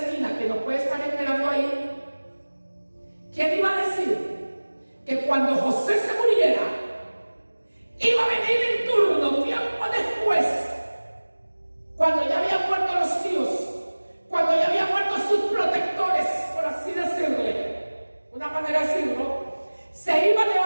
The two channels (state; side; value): inverted; both; correlation -1.00